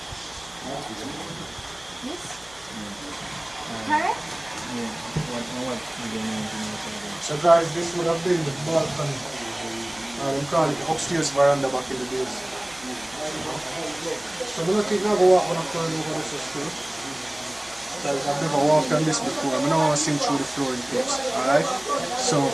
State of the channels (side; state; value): right; noise; hum, 25 dB below the sound